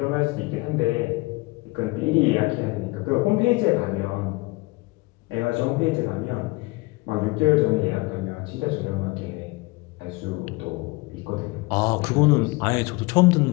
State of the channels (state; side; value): quieter; right; 23.5 dB